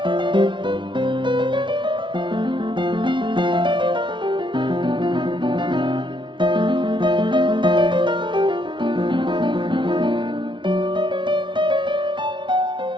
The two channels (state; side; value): late; left; 0.24 ms